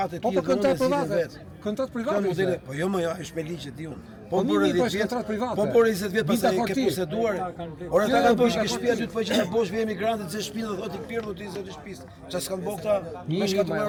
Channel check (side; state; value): both; identical; correlation 1.00